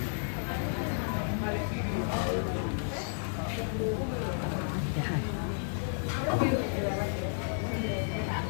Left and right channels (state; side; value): silent; right; digital silence